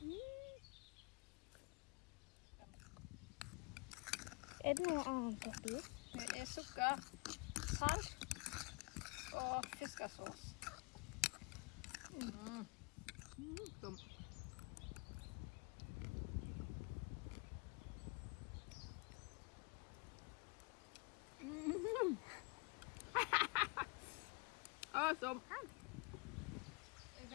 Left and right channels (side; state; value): right; quieter; 28.7 dB